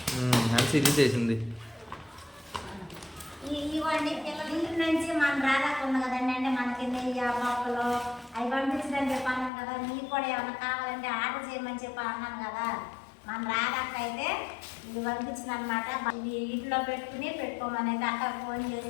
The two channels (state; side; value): drops out; right; at 9.5 s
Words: అనిసి తీసేసింది. ఇవ్వండి పిల్లల ఇంటి నుంచి మనం రాదాకుండా కదండి. అంటే మనకి నెయ్యి పప్పులు అవి పంపించదని చెప్పి అన్నాను కదా. మీకు కూడా ఏమన్నా కావాలంటే ఆర్డర్ చేయమని చెప్పి అన్నాను కదా. మన రాదాక అయితే ఇది పంపించింది అనమాట. ఇది ఇంట్లో పెట్టుకోమని అయితే అక్క ఫోన్